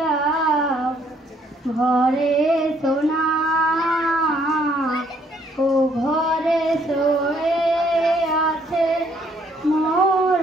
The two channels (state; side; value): normal; both; correlation 0.66